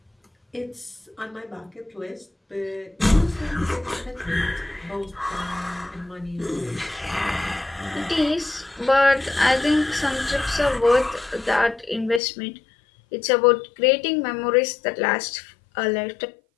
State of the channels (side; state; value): right; drops out; at 12.2 s